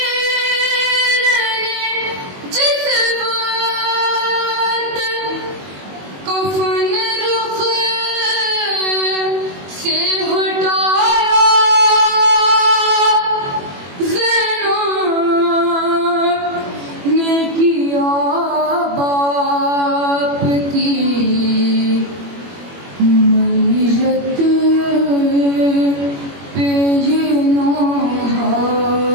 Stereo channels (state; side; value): late; left; 21 ms